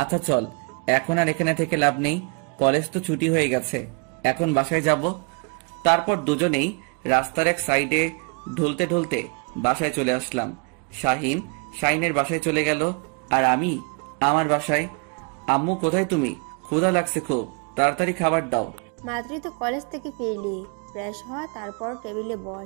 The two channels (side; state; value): left; quieter; 36.0 dB